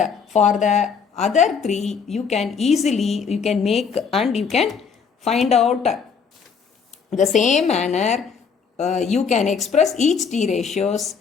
for the other 3 you can easily make and you can find out the same manner. You can express each t ratios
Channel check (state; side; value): quieter; right; 6.1 dB